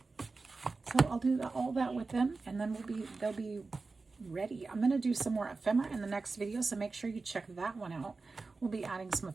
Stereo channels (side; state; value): left; quieter; 3.9 dB